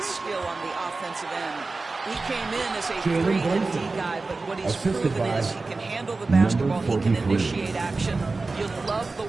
skill on the offensive end. He came in as a 3 and D guy, but what he's proven is he can handle the basketball, he can initiate action. You love the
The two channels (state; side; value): quieter; left; 3.7 dB